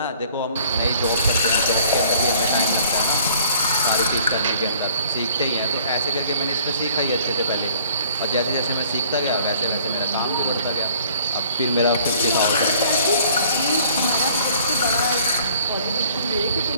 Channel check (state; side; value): inverted; both; correlation -0.56